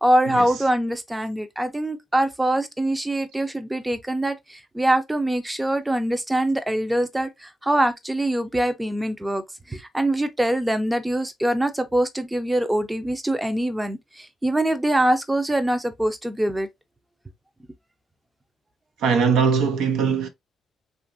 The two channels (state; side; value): normal; both; correlation 0.89